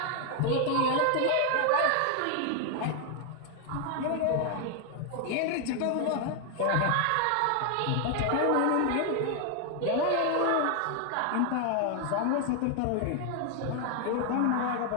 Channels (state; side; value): different; both; correlation 0.00